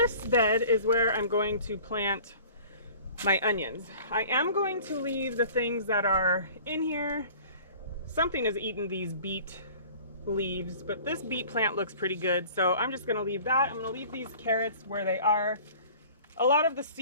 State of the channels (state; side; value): inverted; both; correlation -0.46